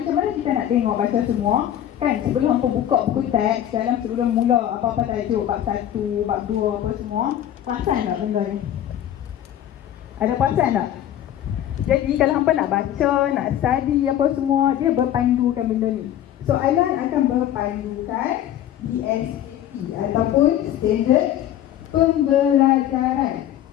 mana kita nak tengok baca semua? Kan sebelum hampa buka buku teks, sebelum mula apa-apa tajuk, bab 1, bab 2, apa semua, perasan tak benda ni? Ada perasan tak? Jadi kalau hampa nak baca, nak study apa semua, dia berpandukan benda ni. Soalan akan berpandukan DSAP ataupun Standard Pembelajaran.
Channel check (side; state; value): right; quieter; 11.4 dB